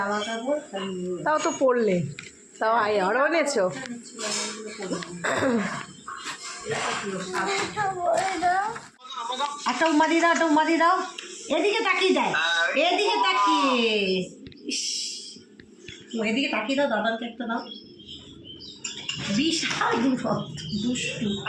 কাপড়, তাও তো পড়লে, তাও আরও এনেছো। একটা উমারি দাও, একটা উমারি দাও, এদিকে তাকিয়ে দেয়, এদিকে তাকিয়ে, এদিকে তাকিয়ে দাও, দাদাকে একটা দাও। বিশাল দুষ্টু।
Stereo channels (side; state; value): both; identical; correlation 1.00